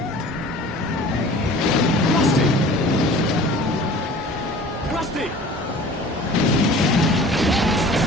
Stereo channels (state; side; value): normal; both; correlation 0.45